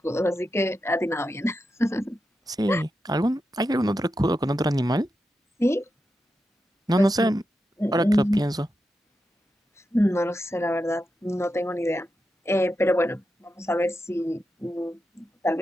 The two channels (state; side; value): normal; both; correlation 0.88